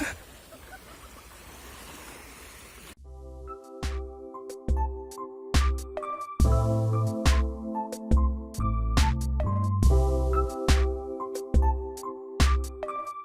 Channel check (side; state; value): both; identical; correlation 1.00